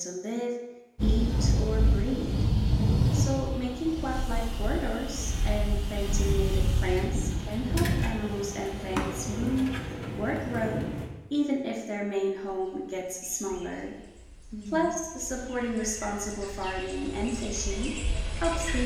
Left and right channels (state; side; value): identical; both; correlation 1.00